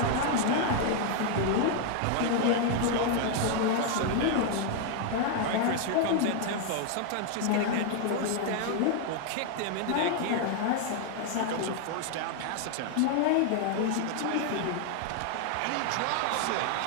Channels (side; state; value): both; different; correlation 0.00